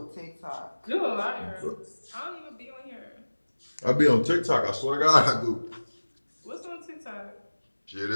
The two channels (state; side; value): inverted; both; correlation -1.00